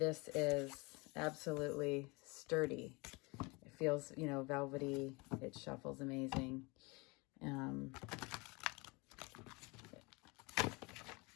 is absolutely sturdy. It feels, velvety. It shuffles amazing.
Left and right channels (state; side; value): quieter; right; 27.0 dB